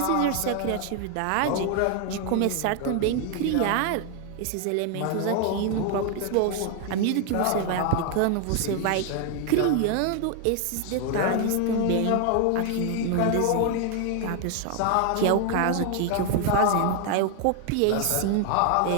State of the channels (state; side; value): different; both; correlation 0.00